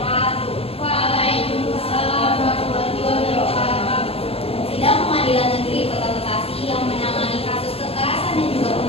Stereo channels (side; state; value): right; late; 0.28 ms